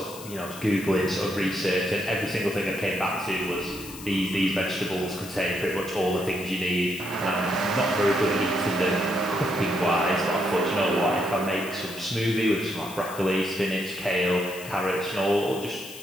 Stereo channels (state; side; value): noise; left; hiss, 14 dB below the sound